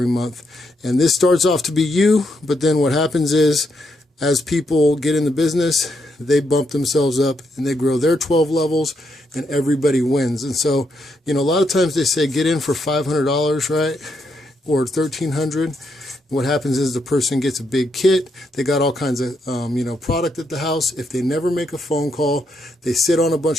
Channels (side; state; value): both; normal; correlation 0.79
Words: month. And this starts off to be you, but then what happens is as people get in the business, they bump themselves up and they grow their 12 levels and everybody wins. And so, you know, a lot of times they say get in for $500, right? Or $1,300. What happens is the person gets a big kit. They got all kinds of, you know, product at the house. If they never make a phone call, they sit on a